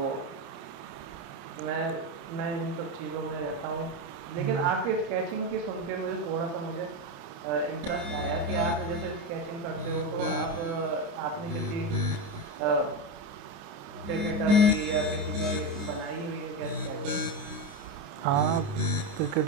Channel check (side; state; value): left; late; 29 ms